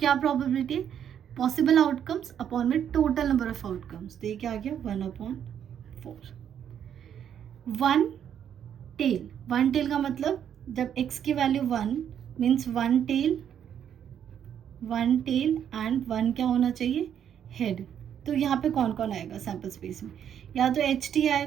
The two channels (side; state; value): left; quieter; 9.1 dB